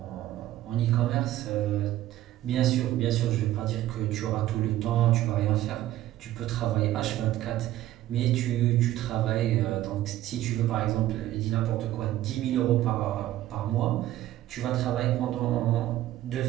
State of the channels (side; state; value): left; quieter; 14.1 dB